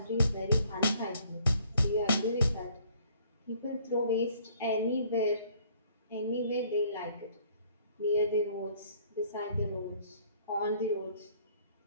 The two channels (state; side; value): inverted; both; correlation -0.61